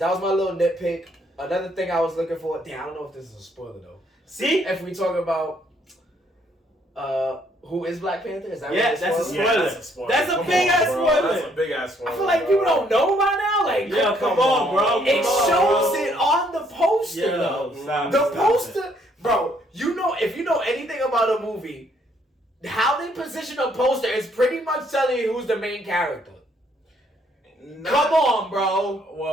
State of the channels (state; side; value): normal; both; correlation 0.68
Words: was my little nitpick. Another thing I was looking for. Damn, I don't know if this is a spoiler though. See, if we talk about who is Black Panther, is that that's a spoiler? Yeah, that's a spoiler. That's a big ass spoiler. That's a big ass spoiler. I feel like people don't know by now. Like, come on, bro. It shows it on the poster, though. The poster, bro. You know, if you know anything about a movie, how they position a poster is pretty much telling you who's the main character. Come on, bro.